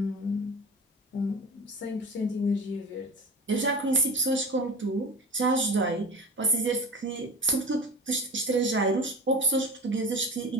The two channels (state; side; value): normal; both; correlation 0.32